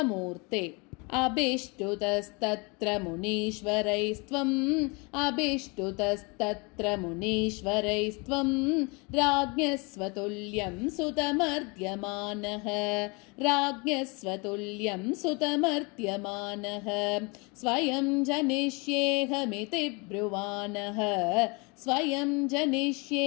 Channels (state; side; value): quieter; right; 29.5 dB